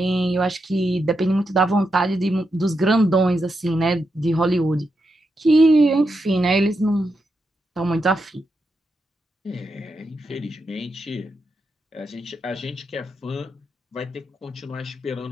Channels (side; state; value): both; normal; correlation 0.85